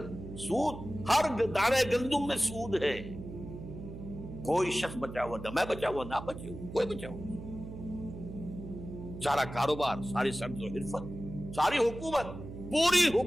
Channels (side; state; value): right; noise; hum, 11 dB below the sound